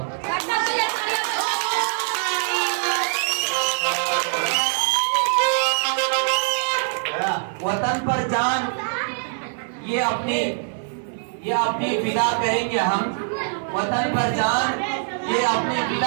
وطن پر جان یہ اپنی فدا کریں گے ہم، وطن پر جان یہ اپنی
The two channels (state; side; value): silent; left; 56 dB below the other